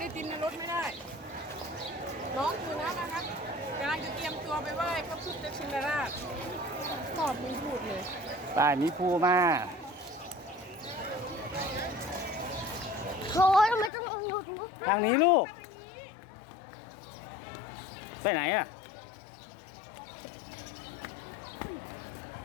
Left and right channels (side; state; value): right; drops out; at 13.9 s